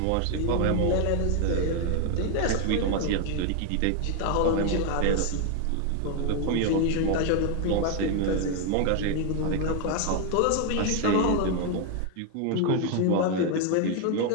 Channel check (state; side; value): different; both; correlation 0.01